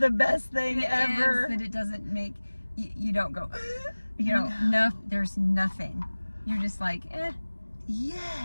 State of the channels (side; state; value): both; inverted; correlation -1.00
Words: the best thing ever. That it doesn't make, you don't go, you know, no, there's nothing. You're just like,